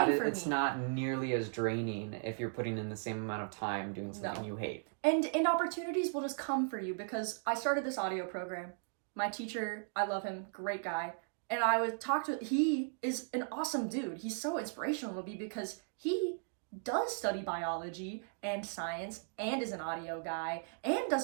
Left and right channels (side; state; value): left; silent; digital silence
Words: for me. It's not nearly as draining if you're putting in the same amount of time doing something you hate. And opportunities will just come for you because I started this audio program. My teacher, I love him, great guy. And I would talk to, he is an awesome dude. He's so inspirational to me because he does study biology and science and is an audio guy and